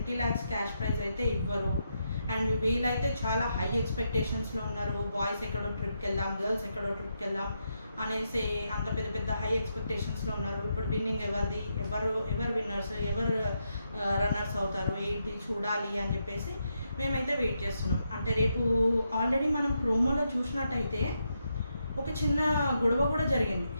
lakhs క్యాష్ ప్రైజ్ అయితే ఇవ్వరు. అండ్ వీళ్ళైతే చాలా హై ఎక్స్పెక్టేషన్స్లో ఉన్నారు. బాయ్స్ ఎక్కడో ట్రిప్కి వెళ్దాం, గర్ల్స్ ఎక్కడో ట్రిప్కి వెళ్దాం అనేసి అంత పెద్ద హై ఎక్స్పెక్టేషన్స్లో ఉన్నారు. ఇప్పుడు విన్నింగ్ ఎవరిది, ఎవరు విన్నర్స్, ఎవరు రన్నర్స్ అవుతారు, ఏంటి చూడాలి అని చెప్పేసి మేమైతే వెయిట్ చేస్తున్నాం. అంటే రేపు ఆల్రెడీ మనం ప్రోమోలో చూసినట్టయితే ఒక చిన్న గొడవ కూడా జరిగింది.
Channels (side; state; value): both; inverted; correlation -0.82